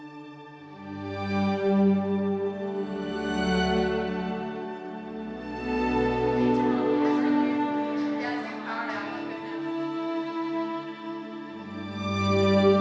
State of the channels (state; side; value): identical; both; correlation 1.00